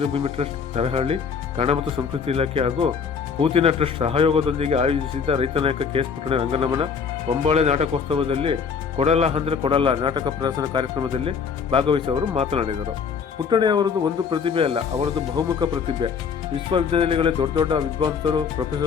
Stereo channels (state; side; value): quieter; right; 6.2 dB